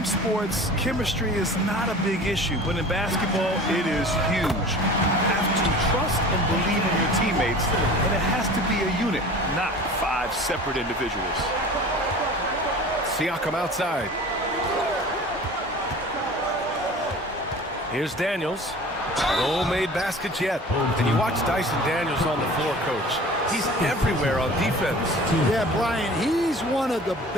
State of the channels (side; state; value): both; normal; correlation 0.41